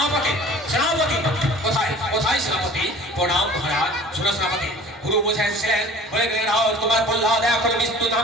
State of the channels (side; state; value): both; normal; correlation 0.45